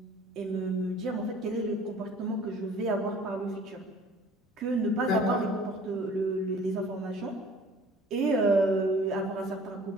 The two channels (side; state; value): both; normal; correlation 0.49